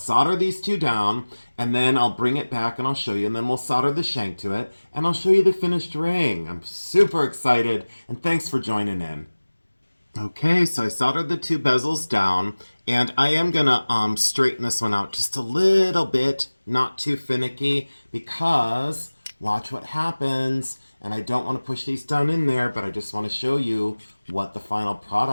these two down, and then I'll bring it back and I'll show you, and then we'll solder the shank to it, and I'll show you the finished ring. I'm super excited, and thanks for joining in. Okay, so I soldered the two bezels down, and I am gonna straighten this one out just a little bit, not too finicky, because watch what happens. And I don't want to push these down in there, but I just want to show you what the final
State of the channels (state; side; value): inverted; both; correlation -1.00